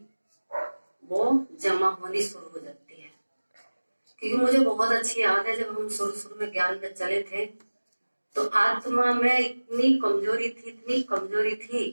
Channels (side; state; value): both; inverted; correlation -1.00